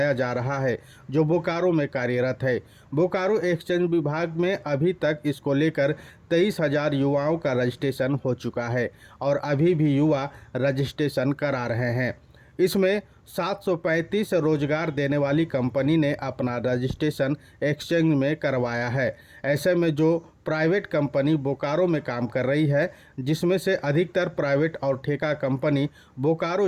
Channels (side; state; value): both; identical; correlation 1.00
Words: जा रहा है जो बोकारो में कार्यरत है। बोकारो एक्सचेंज विभाग में अभी तक इसको लेकर 23,000 युवाओं का रजिस्ट्रेशन हो चुका है और अभी भी युवा रजिस्ट्रेशन करा रहे हैं। इसमें 735 रोजगार देने वाली कंपनी ने अपना रजिस्ट्रेशन एक्सचेंज में करवाया है। ऐसे में जो प्राइवेट कंपनी बोकारो में काम कर रही है, जिसमें से अधिकतर प्राइवेट और ठेका कंपनी